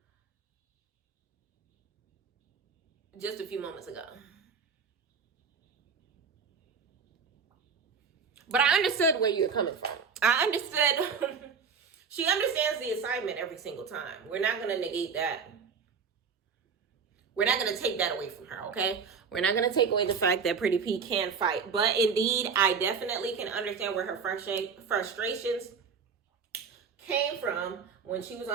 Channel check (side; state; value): left; quieter; 5.9 dB